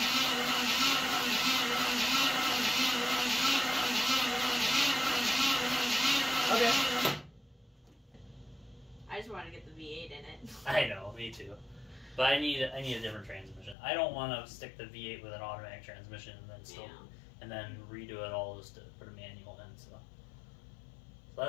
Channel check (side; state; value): right; drops out; at 13.8 s